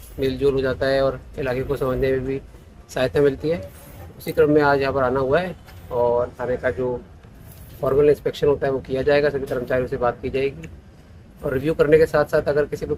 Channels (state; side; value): identical; both; correlation 1.00